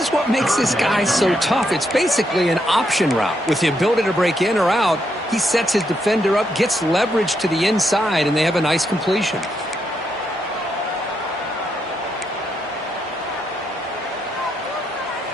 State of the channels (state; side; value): normal; both; correlation 0.79